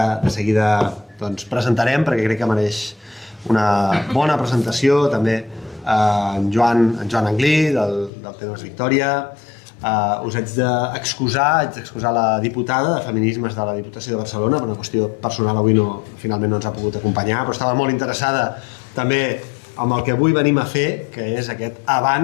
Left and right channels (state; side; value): drops out; right; at 8.1 s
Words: de seguida presentarem perquè crec que mereix una bona presentació, també en Joan Anglí del Temes Victòria. Us haig d'excusar la diputada de Feminismes de la Diputació de Barcelona, per una qüestió personal avui finalment no ens ha pogut acompanyar, però estava molt interessada també amb el que avui venim a fer, que és aquest